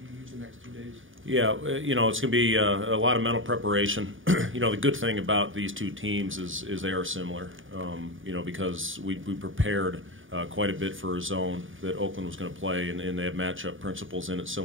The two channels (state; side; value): late; left; 0.57 ms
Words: you use the next 2 days? Yeah, it's going to be a lot of mental preparation. The good thing about these 2 teams is they are similar, because we prepared quite a bit for a zone that Oakland was going to play, and they have matchup principles in it